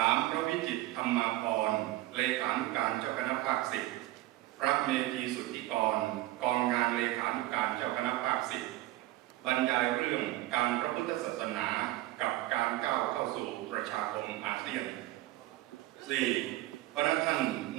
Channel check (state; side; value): quieter; left; 16.5 dB